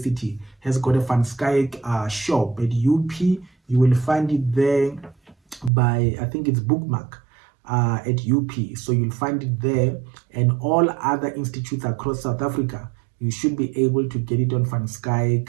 has got a Van Skyke shop. At UP, you will find it there by, I think it's Bookmark at UP. So you'll find it there, and all other institutes across South Africa, you should be able to get it on Van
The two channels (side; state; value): left; drops out; at 5.7 s